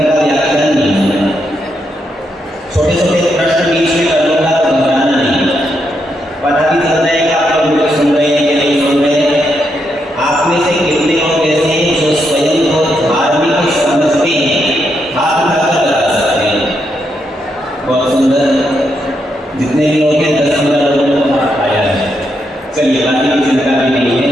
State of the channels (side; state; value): both; normal; correlation 0.80